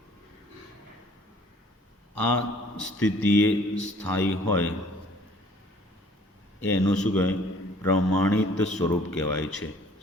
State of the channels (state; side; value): normal; both; correlation 0.56